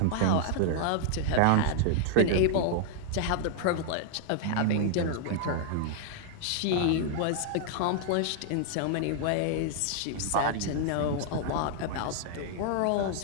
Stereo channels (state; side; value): different; both; correlation -0.01